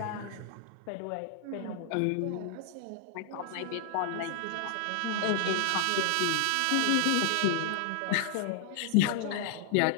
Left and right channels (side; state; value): both; different; correlation -0.01